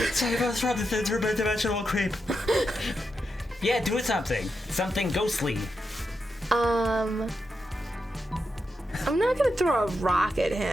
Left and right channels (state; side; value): normal; both; correlation 0.86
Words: Save us from this interdimensional creep. Yeah, do something. Something ghostly. I'm not gonna throw a rock at